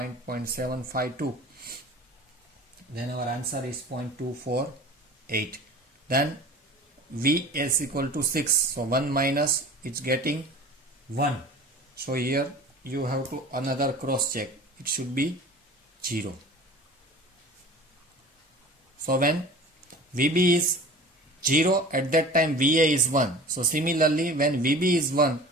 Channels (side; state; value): both; normal; correlation 0.39